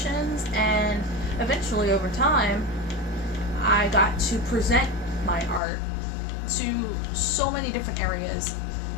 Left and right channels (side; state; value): right; drops out; at 5.6 s